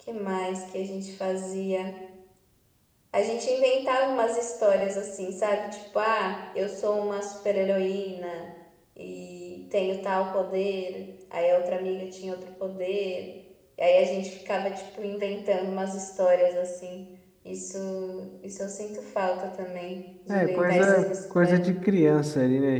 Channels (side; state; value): both; identical; correlation 1.00